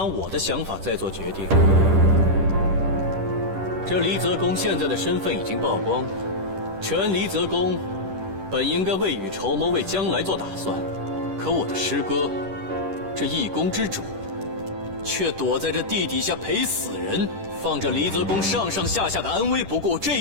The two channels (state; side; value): late; left; 10 ms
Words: 我的想法再做决定？这离泽公现在的身份已经曝光，全离泽公本应该未雨绸缪，为将来做打算。可我的师哥，这一宫之主，却躲在这地底下陪死人，放着离泽公上上下下的安危不顾，这